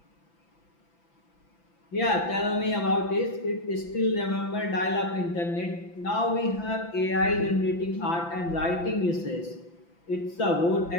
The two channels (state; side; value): late; right; 5.9 ms